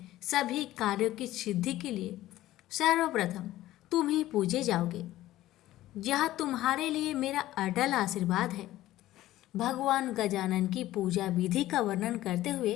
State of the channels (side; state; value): right; quieter; 15.1 dB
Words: सभी कार्यों की सिद्धि के लिए सर्वप्रथम तुम ही पूजे जाओगे। यह तुम्हारे लिए मेरा अटल आशीर्वाद है। भगवान गजानन की पूजा विधि का वर्णन करते हुए